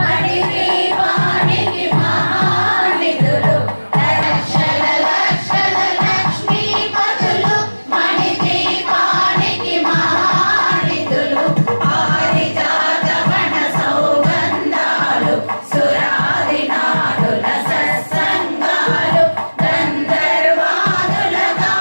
దీపానికి మహానిధులు. లక్షల లక్షల లక్ష్మీపతులు మణి దీపానికి మహానిధులు. పారిజాత వన సౌగంధాలు సురాదినాదుల సత్సంగాలు గంధర్వాదుల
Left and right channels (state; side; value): inverted; both; correlation -1.00